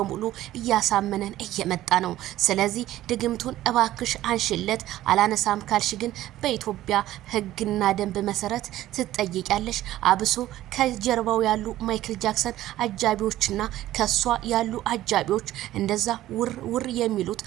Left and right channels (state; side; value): quieter; left; 14.4 dB